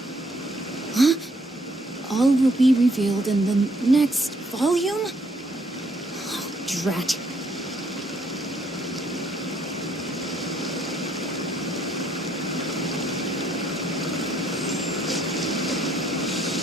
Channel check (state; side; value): normal; both; correlation 0.68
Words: Huh? All will be revealed in the next volume? Oh, drat.